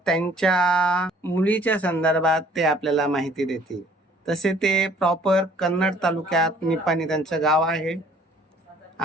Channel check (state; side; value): normal; both; correlation 0.57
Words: त्यांच्या मुलीच्या संदर्भात ते आपल्याला माहिती देतील. तसे ते प्रॉपर कन्नड तालुक्यात निपाणी त्यांचं गाव आहे